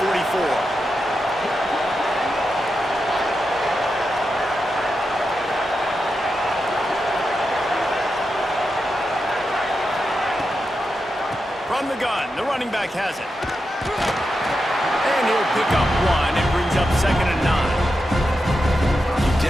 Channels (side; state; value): both; normal; correlation 0.88